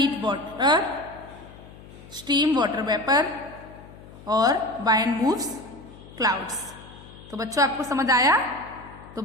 water, steam water vapour और वाइंड मूव्स क्लाउड्स। तो बच्चों आपको समझ आया? तो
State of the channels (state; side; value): noise; left; hum, 19 dB below the sound